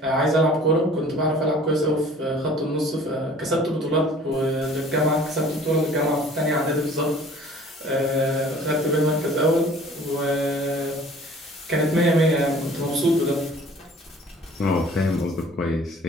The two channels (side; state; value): both; normal; correlation 0.50